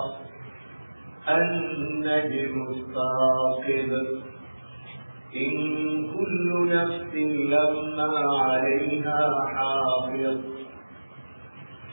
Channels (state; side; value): inverted; both; correlation -1.00